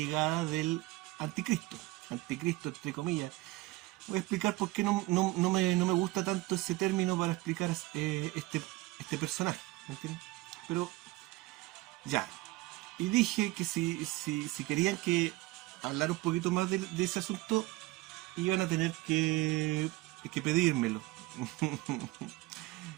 del anticristo. Anticristo, entre comillas. Voy a explicar por qué no me gusta tanto ese término para explicar este personaje, ¿me entiendes? Pero ya, y dije que si querían que hablar un poquito más de ese asunto, iban a tener que pedírmelo.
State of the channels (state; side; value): quieter; left; 19.6 dB